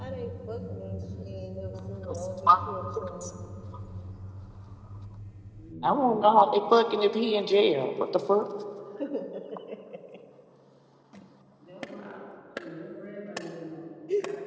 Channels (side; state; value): both; identical; correlation 1.00